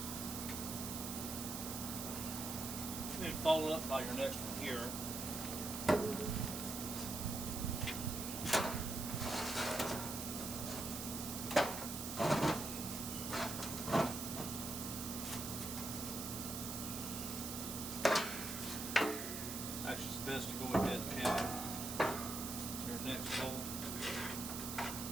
And follow up by your next one here. Actually, it's best to go ahead and have your next bolt.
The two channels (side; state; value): right; noise; hiss, 5 dB below the sound